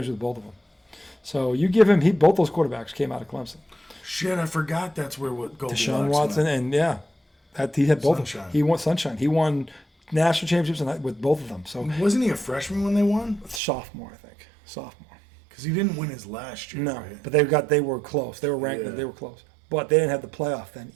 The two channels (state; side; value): drops out; left; at 13.6 s